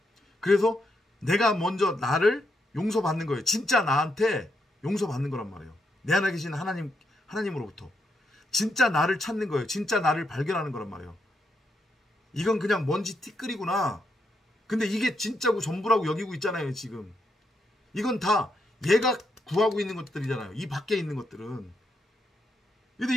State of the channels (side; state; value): both; normal; correlation 0.80